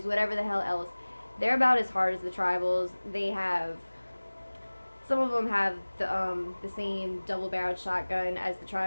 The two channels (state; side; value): inverted; both; correlation -1.00